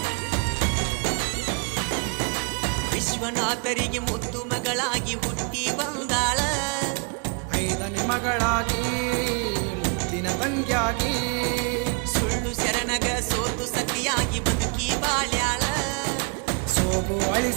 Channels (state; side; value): quieter; left; 35.0 dB